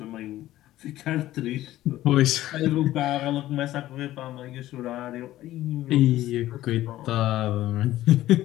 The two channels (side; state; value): right; quieter; 14.8 dB